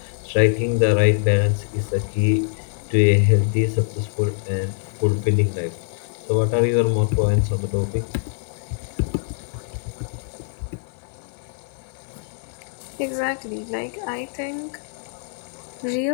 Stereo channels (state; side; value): silent; right; digital silence